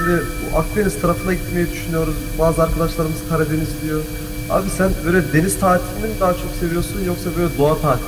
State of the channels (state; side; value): identical; both; correlation 1.00